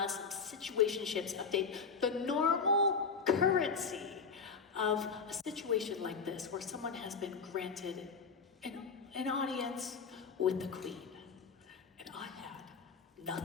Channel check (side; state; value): right; quieter; 5.3 dB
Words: some situationships update, the normal currency of a situation like this where someone has been granted an audience with the queen. And I had